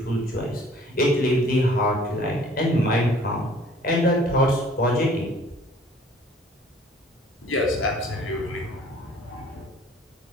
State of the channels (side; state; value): both; normal; correlation 0.53